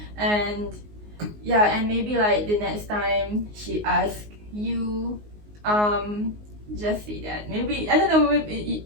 And yeah, and maybe like the next time she asks you, just say that. Maybe, I don't know, maybe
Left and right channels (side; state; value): left; late; 19 ms